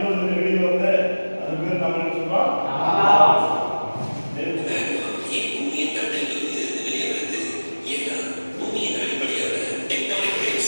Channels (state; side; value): inverted; both; correlation -1.00